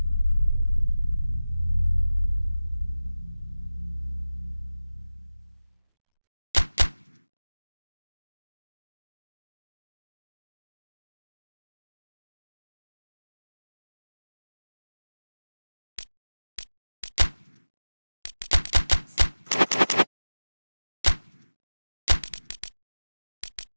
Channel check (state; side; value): inverted; both; correlation -0.98